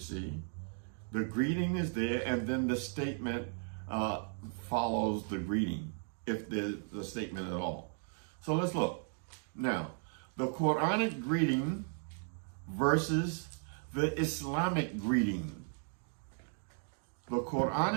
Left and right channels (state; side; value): silent; left; 54 dB below the other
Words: The greeting is there, and then the statement follows the greeting, if there's a statement at all. So let's look. Now, the Quranic greeting versus the Islamic greeting. The